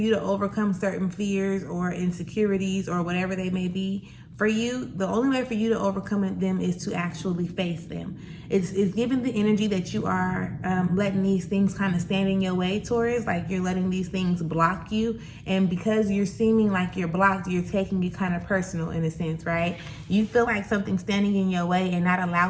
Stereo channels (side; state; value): both; identical; correlation 1.00